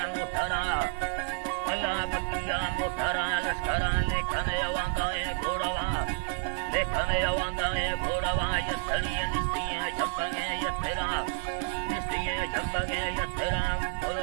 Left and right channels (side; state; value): left; silent; digital silence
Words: मुठरा अला बकिया मुठरा लश्करा लेखने वांगाए घोड़वा लेखने वांगाए घोड़वा ये छड़ी निस्तियां झपके ये तेरा निस्तियां झपके ये तेरा